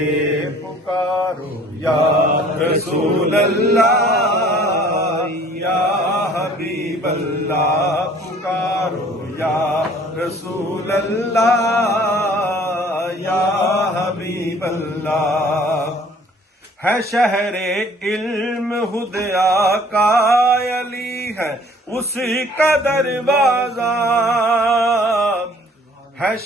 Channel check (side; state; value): both; normal; correlation 0.54